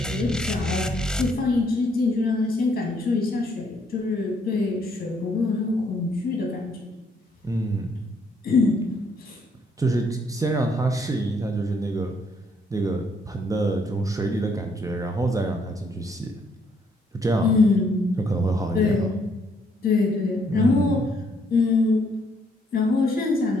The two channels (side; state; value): both; normal; correlation 0.69